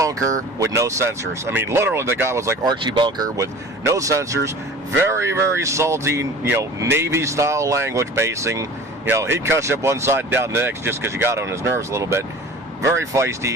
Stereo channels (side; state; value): both; normal; correlation 0.41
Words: with no censors. I mean, literally, the guy was like Archie Bunker with no censors. Very, very salty, Navy-style language basing. He'd cuss you up one side and down the next just because you got on his nerves a little bit. Very